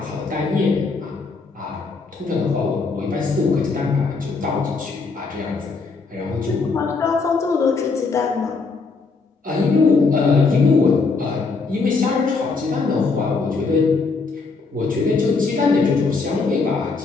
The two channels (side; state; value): right; quieter; 4.3 dB